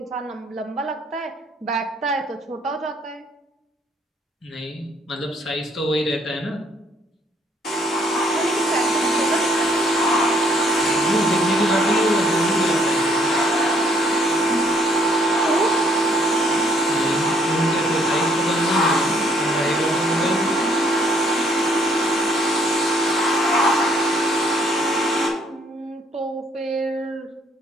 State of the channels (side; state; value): both; normal; correlation 0.65